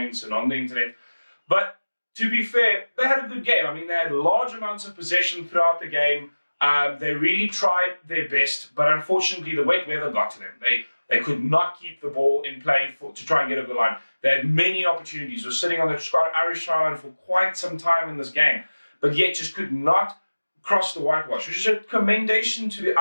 and on the internet. But to be fair, they had a good game. I mean, they had large amounts of possession throughout the game. They really tried their best, but unfortunately the wet weather got to them. They could not keep the ball in play to try and get over the line. They had many opportunities. Were sitting on the Irish try line for quite some time in this game, but yet just could not cross the whitewash, which is a commendation to the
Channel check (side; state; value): both; inverted; correlation -1.00